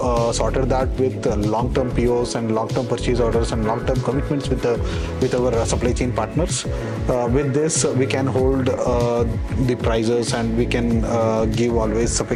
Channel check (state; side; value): identical; both; correlation 1.00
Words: sorted that with long-term POs and long-term purchase orders and long-term commitments with our supply chain partners. With this, we can hold the prices, and we can always